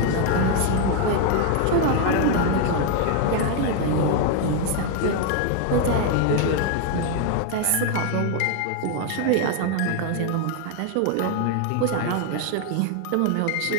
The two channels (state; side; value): different; both; correlation 0.01